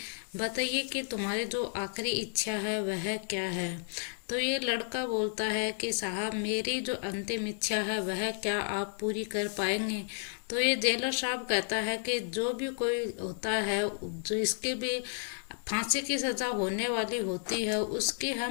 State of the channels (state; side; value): silent; right; digital silence